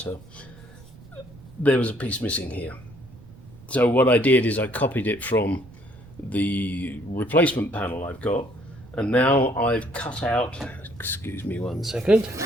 there was a piece missing here. So what I did is I copied it from the replacement panel I've got, and now I've cut out, excuse me one second,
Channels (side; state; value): right; noise; rumble, 21 dB below the sound